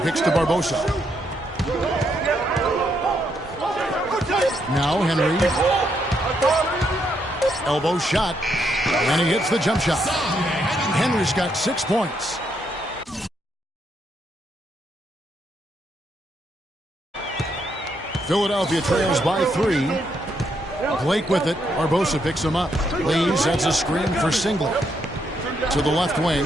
picks to Barbosa. Now Henry. Elbow shot. And he hits the jump shot. Henry's got 6 points. Philadelphia trails by 3. Blake with it. Barbosa picks him up. Lee sets a screen for Singler. To the left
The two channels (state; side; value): normal; both; correlation 0.76